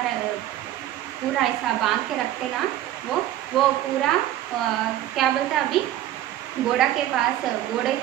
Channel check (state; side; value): quieter; left; 13.2 dB